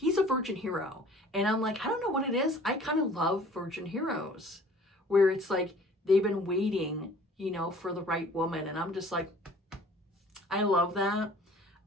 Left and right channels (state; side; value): normal; both; correlation 0.51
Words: a virgin hero. And I'm like, I don't know what it is. I kind of love virgin heroes where it's like they've been waiting, you know, for the right woman. And I'm just like, I love that.